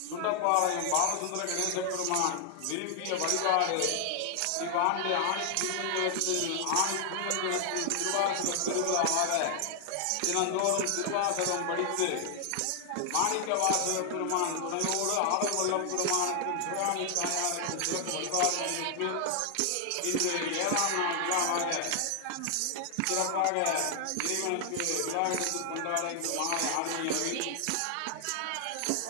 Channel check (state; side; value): different; both; correlation 0.00